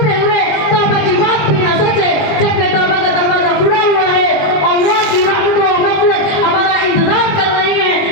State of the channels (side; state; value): right; late; 20 ms